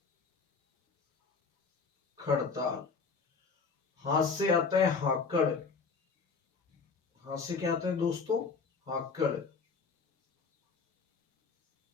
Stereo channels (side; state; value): right; quieter; 4.9 dB